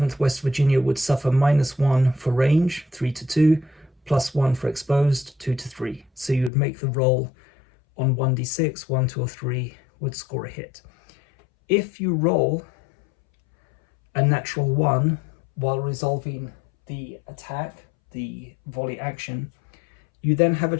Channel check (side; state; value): right; drops out; at 6.5 s